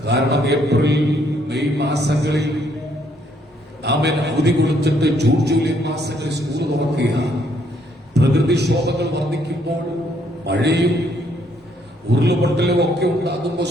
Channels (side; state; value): both; normal; correlation 0.69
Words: കാരണം ഏപ്രിൽ മെയ് മാസങ്ങളിൽ നാമൻ അവധി കൊടുത്തിട്ട് ജൂൺ ജൂലൈ മാസങ്ങളിൽ സ്കൂൾ തുറക്കുകയാണ്. പ്രകൃതിക്ഷോഭങ്ങൾ വർദ്ധിക്കുമ്പോൾ മഴയും ഉരുളുപൊട്ടലും ഒക്കെ ഉണ്ടാകുമ്പോൾ